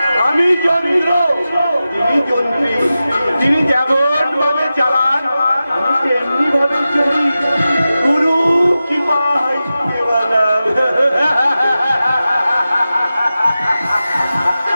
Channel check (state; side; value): inverted; both; correlation -0.93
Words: আমি যন্ত্র, তিনি যন্ত্রী। তিনি যেমন ভাবে চালান আমি তেমনি ভাবে চলি। গুরু কি পাই কেবলা।